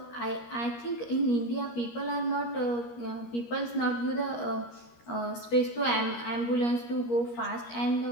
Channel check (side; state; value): right; late; 13 ms